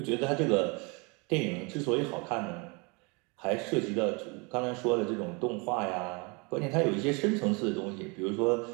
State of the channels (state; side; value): quieter; left; 30.3 dB